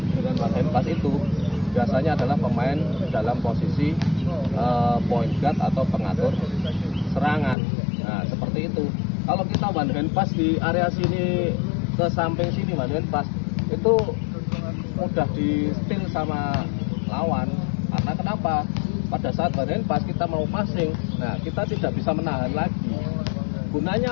dengan one hand pass itu biasanya adalah pemain dalam posisi point guard atau pengatur serangan. Nah, seperti itu. Kalau kita one hand pass di area sini ke samping sini, one hand pass itu mudah di steal sama lawan. Karena kenapa? Pada saat one hand pass kita mau passing, nah kita tidak bisa menahan lagi.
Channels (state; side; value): drops out; right; at 7.6 s